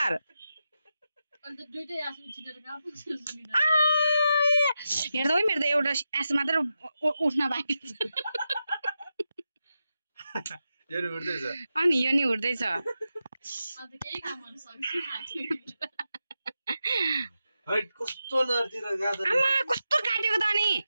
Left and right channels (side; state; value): both; inverted; correlation -0.89